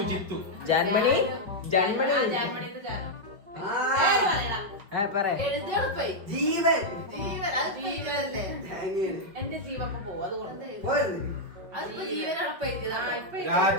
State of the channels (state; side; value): late; left; 5.2 ms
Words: ജിത്തു. ജാൻമണി ആ, ജാൻമണിത്തെ ജാനോ. ആ പേര് പറയടാ. പറയാ. എഴുതെടുപ്പേ. ജീവൻ ജീവൻ. അത് ജീവനല്ലേ? എന്റെ ജീവപ്പം പോവും, അതുകൊണ്ട്. അതിപ്പോ ജീവനടപ്പ് ആ, എഴുതിയതാണ്. ഇപ്പൊ